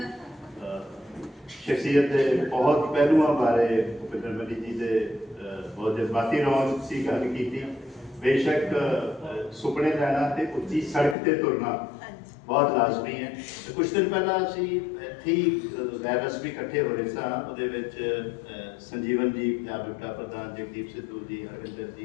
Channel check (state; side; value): drops out; right; at 11.2 s